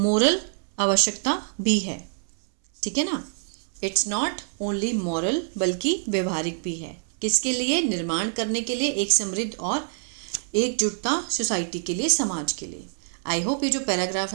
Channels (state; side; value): silent; left; 61 dB below the other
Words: आवश्यकता भी है, ठीक है ना। इट्स नॉट ओनली मॉरल बल्कि व्यवहारिक भी है। किसके लिए? निर्माण करने के लिए, एक समृद्ध और एकजुटता सोसाइटी के लिए, समाज के लिए। आई होप ये जो पैराग्राफ